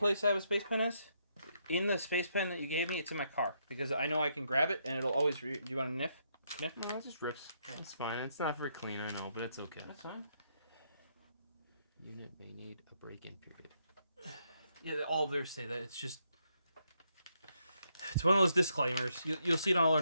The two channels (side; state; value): both; inverted; correlation -0.76